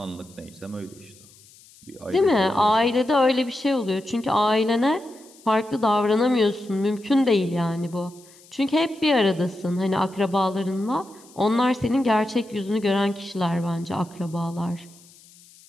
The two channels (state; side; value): noise; left; hiss, 25 dB below the sound